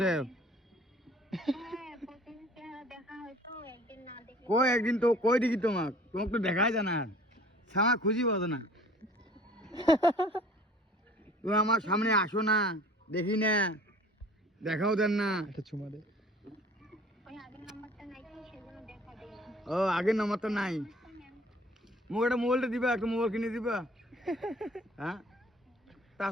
কই একদিন তো কই দেখি তোমাকে, তোমাকে তো দেখাই যায় না, সামা খুঁজি পাবো না। তুমি আমার সামনে আসো না, দেখি না, দেখাও দেন না। একটা চুমা দে। ও আগের নাম্বার তো নাই, মুখ একটা মোবাইলটা দিবা, একটা মোবাইল কিনে দিবা। হ্যাঁ,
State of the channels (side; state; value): both; normal; correlation 0.50